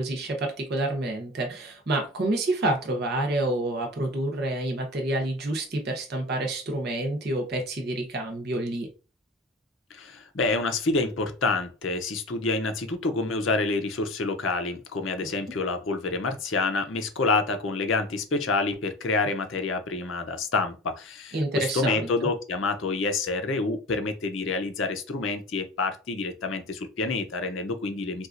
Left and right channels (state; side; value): normal; both; correlation 0.34